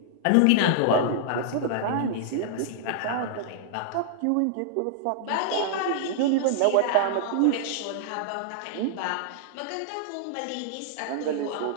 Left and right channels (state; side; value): different; both; correlation -0.01